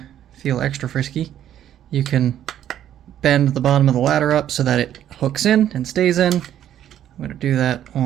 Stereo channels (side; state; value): left; quieter; 11.0 dB